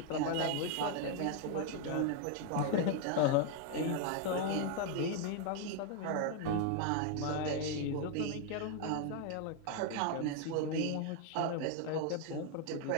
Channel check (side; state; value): both; different; correlation 0.00